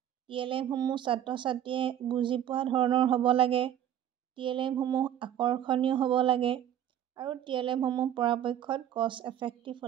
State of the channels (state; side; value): quieter; left; 10.6 dB